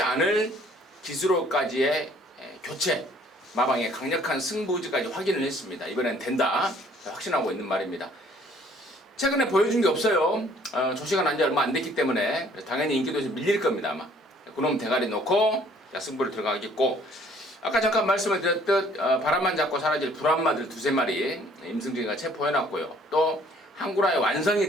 않을 기술로까지의 교체, 마방의 강력한 승부지까지 확인을 했습니다. 이번엔 된다 확신하고 있는 말입니다. 최근에 보여준 게 없어요. 조시가 난 지 얼마 안 됐기 때문에 당연히 인기도 좀 밀릴 겁니다. 아마 그놈 대가리 놓고 승부를 들어가겠고, 아까 잠깐 말씀을 드렸듯 바람만 잡고 사라질 불안마들 두세 마리 임승진이가 체포해놨고요. 또 한구라의 완성이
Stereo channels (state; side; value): normal; both; correlation 0.58